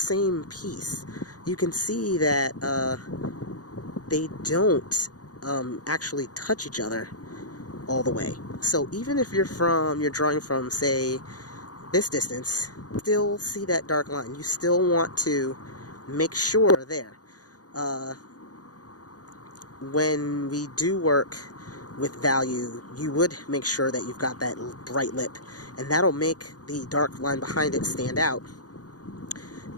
piece. You can see that, they don't actually touch each other all the way. So even if you're drawing from, say, this distance, still see that dark line. You still want to make sure there. When we do work with value, you would make sure that you've got that bright lip, and that'll make the dark line behind it stand out.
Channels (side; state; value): right; late; 0.68 ms